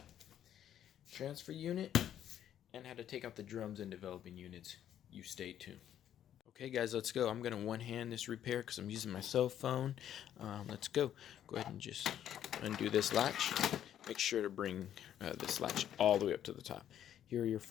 transfer unit, and how to take out the drums and developing units. You stay tuned. Okay guys, let's go. I'm going to one-hand this repair because I'm using my cell phone. Let's go. Go ahead and just undo this latch. Make sure to bring this latch all the way up to the top. Here are your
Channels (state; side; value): quieter; right; 10.6 dB